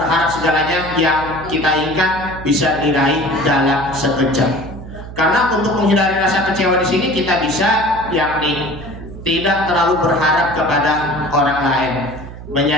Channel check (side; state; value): right; noise; hum, 13 dB below the sound